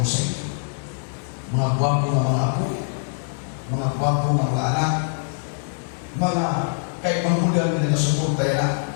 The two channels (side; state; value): right; silent; digital silence